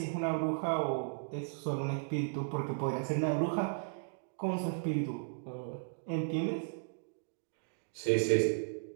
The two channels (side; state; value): left; silent; digital silence